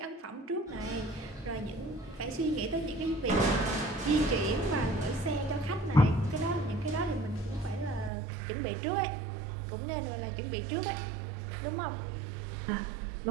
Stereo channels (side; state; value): left; drops out; at 8.1 s